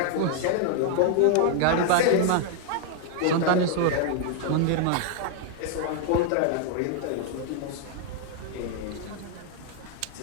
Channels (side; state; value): both; different; correlation 0.00